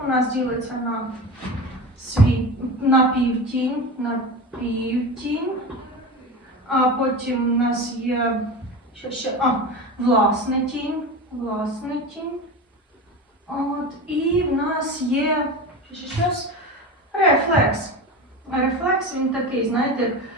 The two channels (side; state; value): both; normal; correlation 0.27